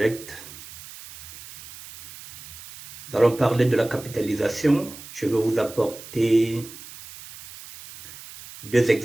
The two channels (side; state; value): right; noise; hiss, 16 dB below the sound